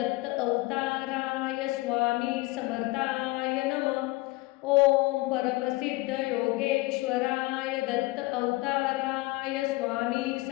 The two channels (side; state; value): right; quieter; 21.5 dB